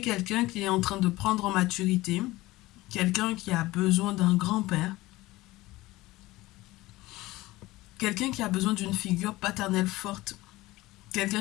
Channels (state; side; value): quieter; right; 18.9 dB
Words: qui est en train de prendre en maturité, quelqu'un qui a besoin d'un grand-père, quelqu'un qui a besoin d'une figure paternelle forte,